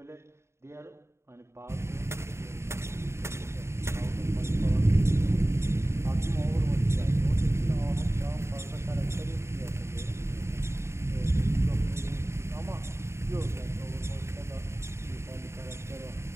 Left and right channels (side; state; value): left; late; 0.13 ms